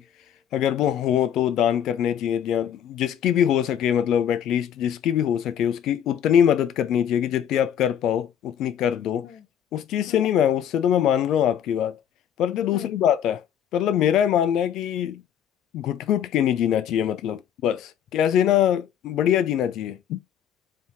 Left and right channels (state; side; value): quieter; right; 9.6 dB